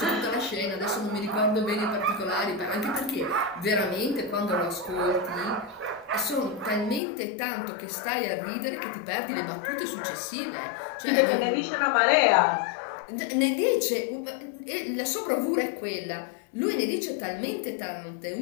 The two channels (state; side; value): drops out; right; at 7.0 s